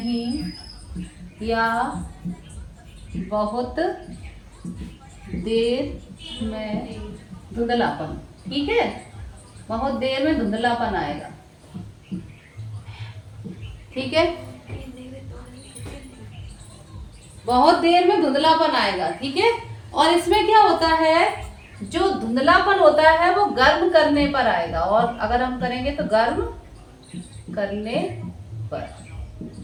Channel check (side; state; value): both; identical; correlation 1.00